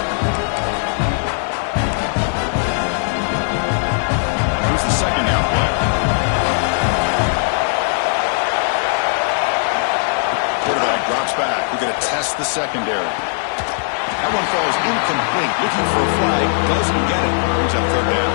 Here's the second down play. Quarterback drops back. We're going to test the secondary. That one falls incomplete. Looking for a flag. Doesn't get it. Brings up third down.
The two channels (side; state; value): right; silent; 67 dB below the other